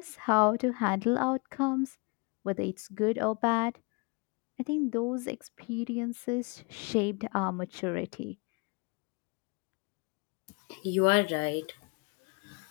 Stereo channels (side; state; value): right; quieter; 30.7 dB